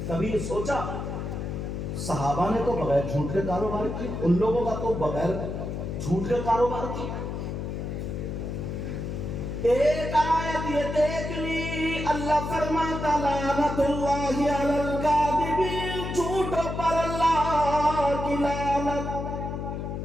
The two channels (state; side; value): noise; left; hum, 4 dB below the sound